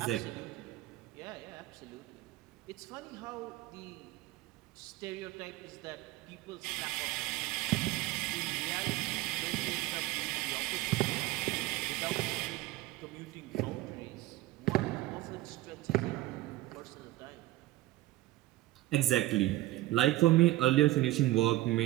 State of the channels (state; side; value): quieter; left; 16.8 dB